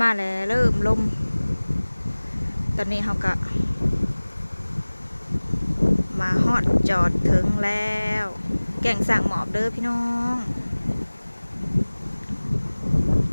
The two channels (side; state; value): both; inverted; correlation -1.00